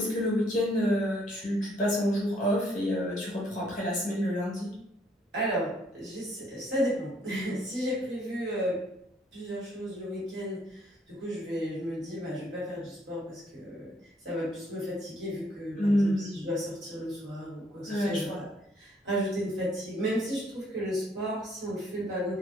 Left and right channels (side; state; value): both; normal; correlation 0.66